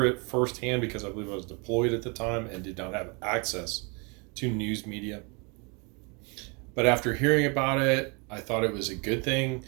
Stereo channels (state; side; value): quieter; left; 31.8 dB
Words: it firsthand because I believe I was deployed at the time and did not have access to news media. But after hearing about it, I thought it was a good thing.